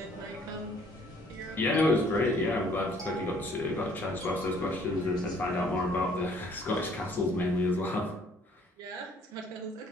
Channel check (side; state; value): both; normal; correlation 0.59